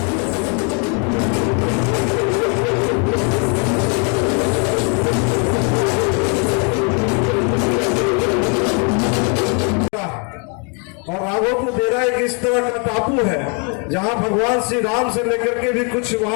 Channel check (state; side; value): quieter; right; 36.9 dB